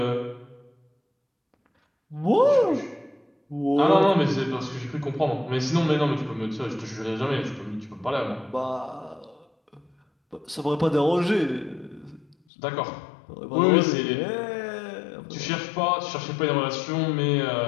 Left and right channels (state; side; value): drops out; right; at 12.4 s